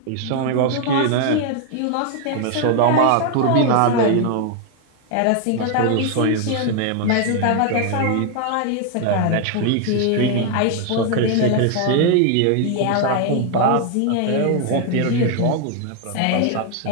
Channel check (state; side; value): different; both; correlation 0.00